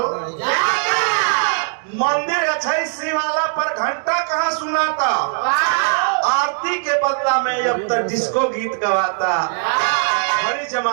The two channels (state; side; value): silent; left; digital silence